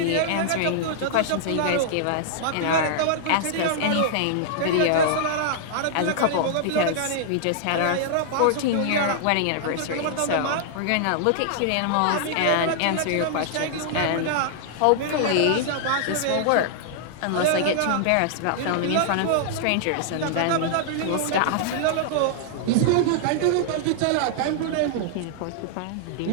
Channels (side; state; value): both; different; correlation -0.01